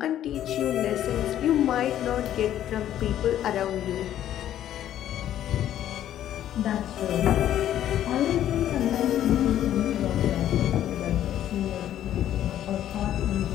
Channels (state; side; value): quieter; right; 11.6 dB